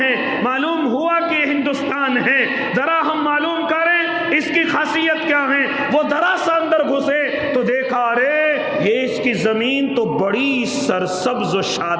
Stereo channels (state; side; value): identical; both; correlation 1.00